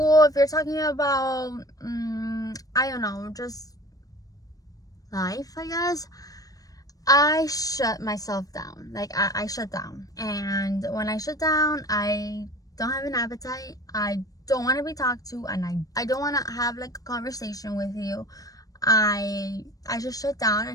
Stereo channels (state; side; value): late; right; 0.18 ms